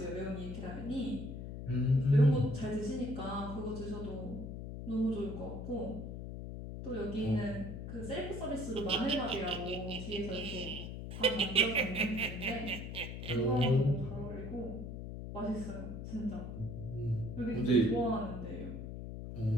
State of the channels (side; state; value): left; noise; hum, 7 dB below the sound